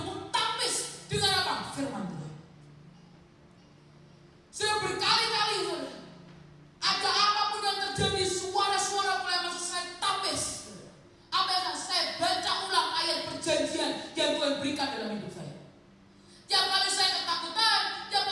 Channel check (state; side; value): identical; both; correlation 1.00